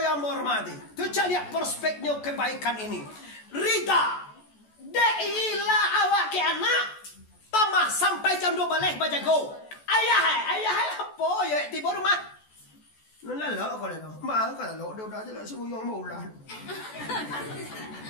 yang menghormati. Tu lihat perspeknya kebaikan ini. Rida, deilah awak ke anak. Tamah sampai jam 2 balik baca go. Ayah apa ya tiba rumah? Nala kau le no. Ma kau lo dia dah jelas semua yang mau lah.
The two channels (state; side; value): late; right; 14 ms